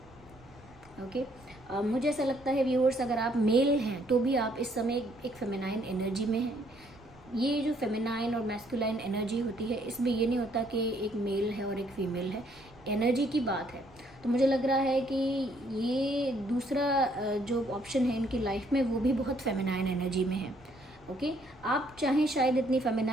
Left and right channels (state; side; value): noise; right; rumble, 25 dB below the sound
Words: ओके मुझे ऐसा लगता है व्यूअर्स, अगर आप मेल हैं तो भी आप इस समय एक फेमिनाइन एनर्जी में हैं। ये जो फेमिनाइन और मैस्कुलाइन एनर्जी होती है, इसमें ये नहीं होता कि एक मेल है और एक फीमेल है, एनर्जी की बात है। तो मुझे लग रहा है कि ये दूसरा जो ऑप्शन है इनकी लाइफ में वो भी बहुत फेमिनाइन एनर्जी में है। ओके आप चाहें शायद इतनी